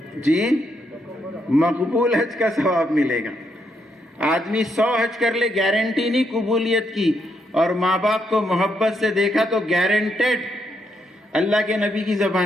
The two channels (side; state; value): both; normal; correlation 0.78